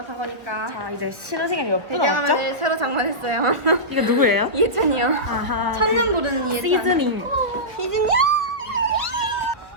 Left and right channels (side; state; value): left; late; 1.0 ms